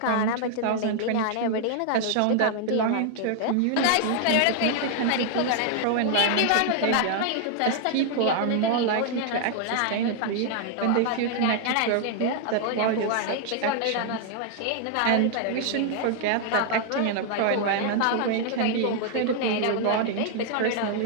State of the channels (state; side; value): different; both; correlation 0.00